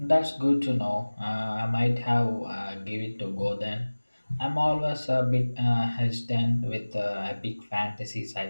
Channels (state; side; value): inverted; both; correlation -1.00